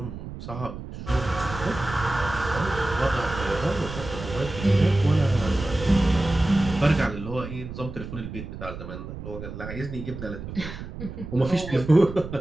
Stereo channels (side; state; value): right; noise; rumble, 10 dB below the sound